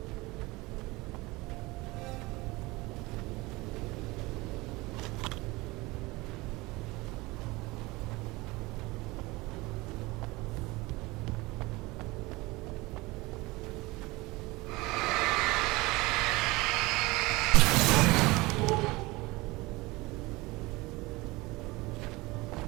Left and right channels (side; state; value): left; quieter; 22.2 dB